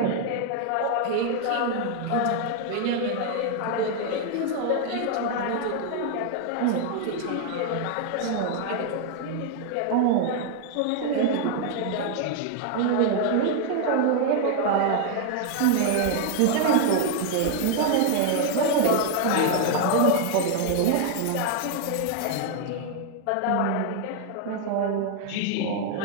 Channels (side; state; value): both; different; correlation 0.00